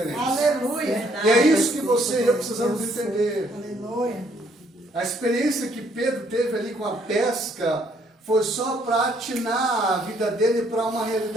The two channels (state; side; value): normal; both; correlation 0.67